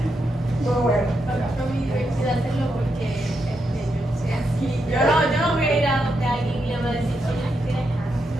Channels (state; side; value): normal; both; correlation 0.83